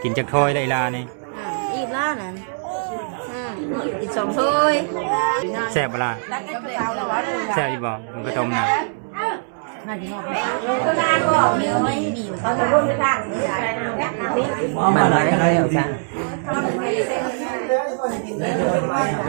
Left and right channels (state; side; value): silent; left; digital silence